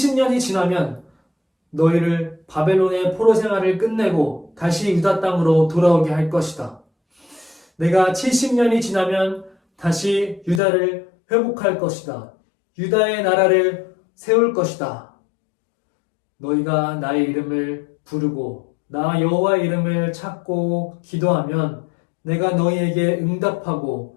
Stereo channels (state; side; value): drops out; right; at 10.6 s